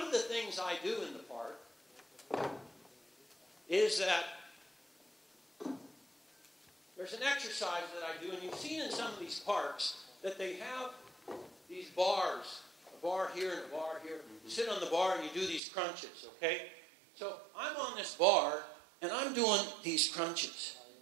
of the things I do in the park is that there's an exercise that I do, and you've seen in some of these parks that they have these bars, a bar here and a bar here. You sit on the bar and you do these crunches, okay? So I'm on this bar, and I'm doing these crunches.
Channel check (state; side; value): drops out; left; at 15.6 s